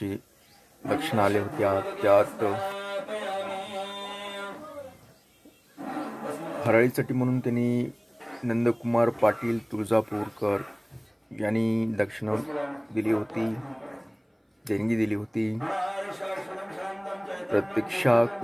दक्षिणा आल्या होत्या, त्यात हराळीसाठी म्हणून त्यांनी नंदकुमार पाटील तुळजापूरकर यांनी दक्षिणा दिली होती, देणगी दिली होती। प्रतीक्षा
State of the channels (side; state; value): both; identical; correlation 1.00